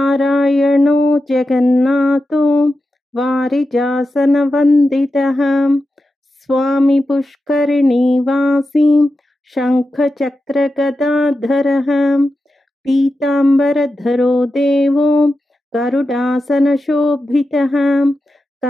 जगन्नाथो वारिजासनवन्दितः स्वामी पुष्करिणीवासी शङ्खचक्रगदाधरः पीताम्बरधरो देवो गरुडासनशोभितः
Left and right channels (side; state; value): both; normal; correlation 0.91